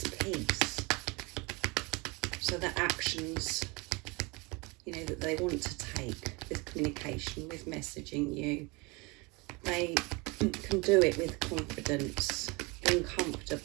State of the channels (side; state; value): left; quieter; 26.9 dB